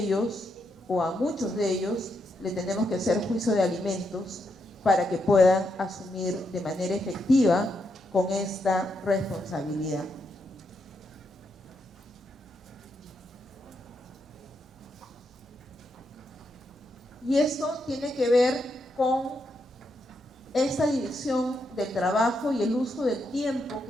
o a muchos de ellos, le tenemos que hacer juicio de alimentos para que puedan asumir de manera efectiva con esta responsabilidad. Y esto tiene que ver con esta división del trabajo y el uso del tiempo,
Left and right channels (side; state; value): both; normal; correlation 0.81